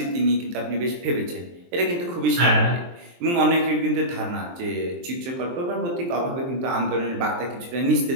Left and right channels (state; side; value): late; left; 23 ms